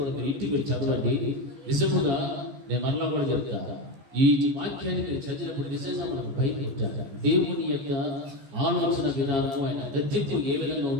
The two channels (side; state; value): left; late; 14 ms